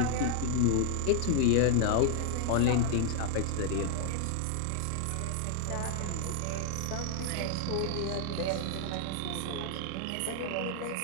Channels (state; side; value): different; both; correlation 0.00